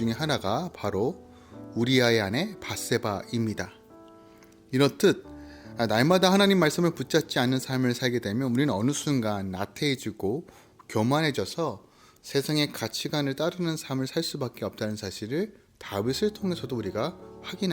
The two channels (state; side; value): identical; both; correlation 1.00